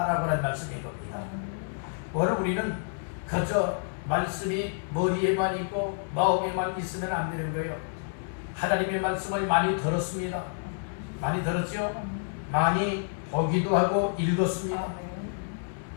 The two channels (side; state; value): right; silent; digital silence